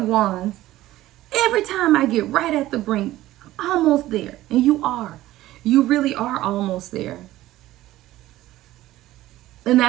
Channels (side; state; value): left; quieter; 15.6 dB